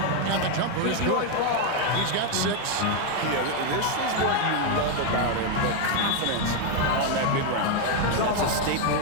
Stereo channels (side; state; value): both; different; correlation 0.01